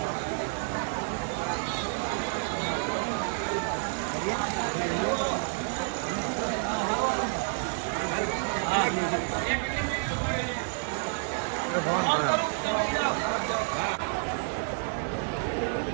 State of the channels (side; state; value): left; silent; 58 dB below the other